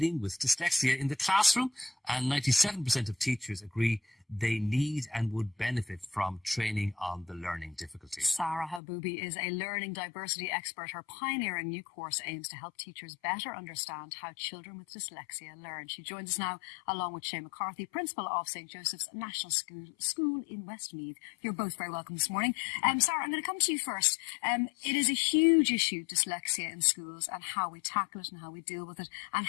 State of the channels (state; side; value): drops out; right; at 8.8 s